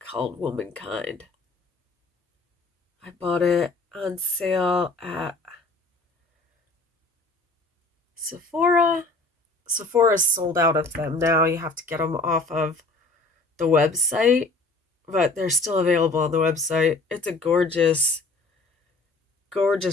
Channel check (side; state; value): right; quieter; 3.2 dB